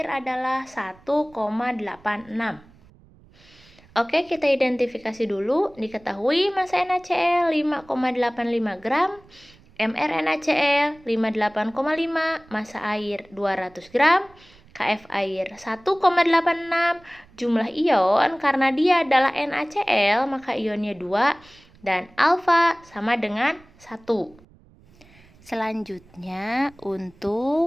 adalah 1,86. Oke, kita identifikasi dulu. Diketahui massa NaCl 5,85 gram, mR NaCl 58,5, massa air 200 gram, Kf air 1,86, jumlah ion karena dia adalah NaCl maka ionnya 2 dan alfa sama dengan 1. Selanjutnya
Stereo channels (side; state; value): right; noise; rumble, 27 dB below the sound